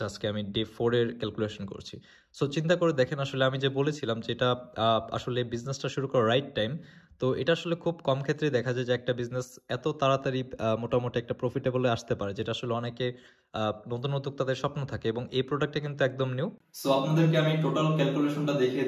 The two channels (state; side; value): identical; both; correlation 1.00